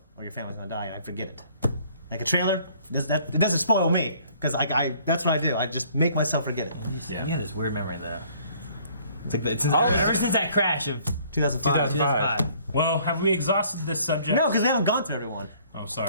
or your family's gonna die, and I forget it. like a trailer, it doesn't spoil me because that's what I do. I just make myself forget it. Yeah, this weird memory though. It's like ever since that crash of 2005. Well, have we exhausted this subject? No, because they haven't gone through everyone. Oh,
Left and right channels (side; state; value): both; inverted; correlation -0.58